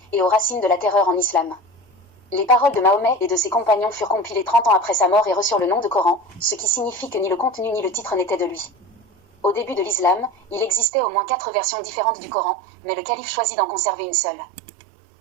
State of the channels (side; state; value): left; drops out; at 10.9 s